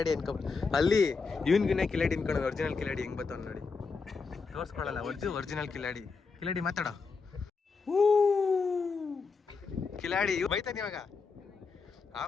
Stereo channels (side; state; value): right; quieter; 4.7 dB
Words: ಇನ್ಕೊಬಿಟ್ಟು ಅಲ್ಲಿ ಇವನ್ಗಿನ ಕಿಲಾಡಿ ಇನ್ಕೊಂಡು ಒರಿಜಿನಲ್ ಕಿಲಾಡಿ ಹೆಂಗ್ ಬರ್ತಾವ ನೋಡಿ. ತೋರಿಸ್ಕೊಳಲ್ಲ ಒರಿಜಿನಲ್ ಕಿಲಾಡಿ. ಮಾತಾಡೋ. ಕಿಲಾಡಿ ಬೈತಾನೆ ಇವಾಗ.